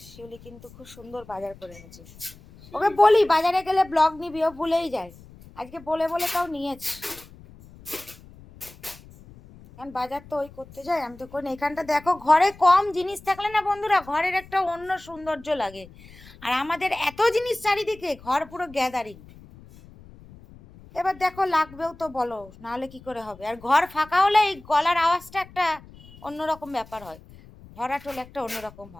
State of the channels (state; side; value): noise; left; rumble, 21 dB below the sound